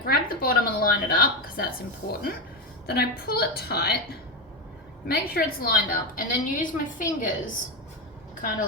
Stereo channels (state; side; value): normal; both; correlation 0.13